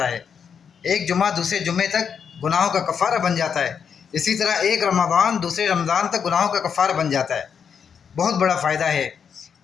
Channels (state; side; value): quieter; right; 7.0 dB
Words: ہے، ایک جمعہ دوسرے جمعے تک گناہوں کا کفارہ بن جاتا ہے، اسی طرح ایک رمضان دوسرے رمضان تک گناہوں کا کفارہ بن جاتا ہے۔ بہت بڑا فائدہ ہے،